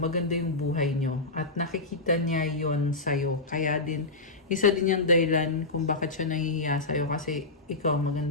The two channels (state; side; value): quieter; right; 3.2 dB